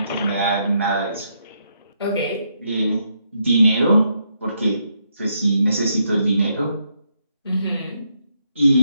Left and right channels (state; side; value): inverted; both; correlation -0.78